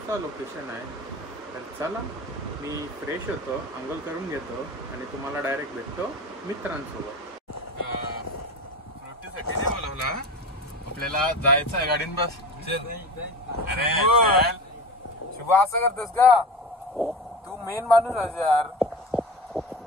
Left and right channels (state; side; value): normal; both; correlation 0.30